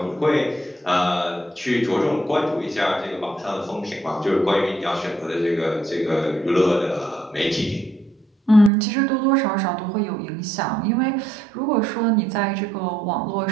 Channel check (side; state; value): left; drops out; at 8.7 s